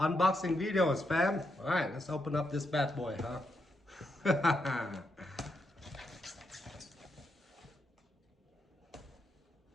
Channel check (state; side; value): normal; both; correlation 0.81